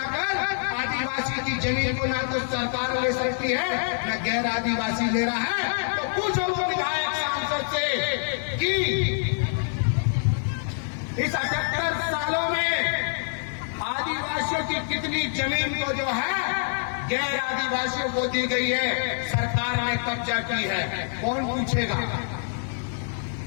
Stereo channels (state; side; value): silent; right; digital silence